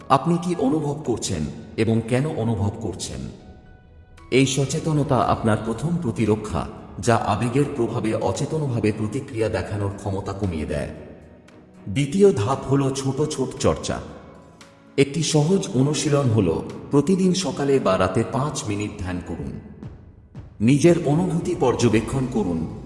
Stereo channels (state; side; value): identical; both; correlation 1.00